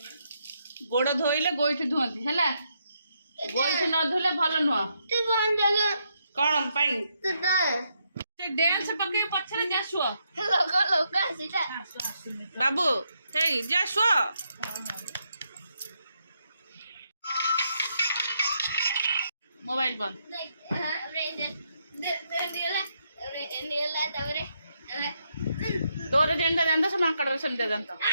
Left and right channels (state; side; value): inverted; both; correlation -0.78